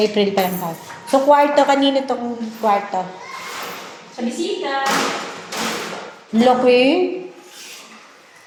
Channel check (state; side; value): identical; both; correlation 1.00